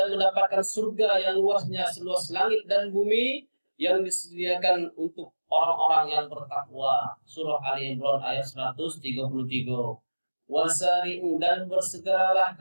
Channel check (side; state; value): both; inverted; correlation -1.00